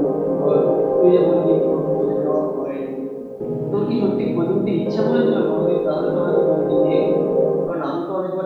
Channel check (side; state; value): both; identical; correlation 1.00